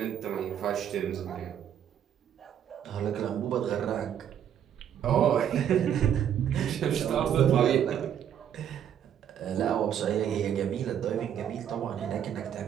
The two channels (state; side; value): quieter; left; 9.4 dB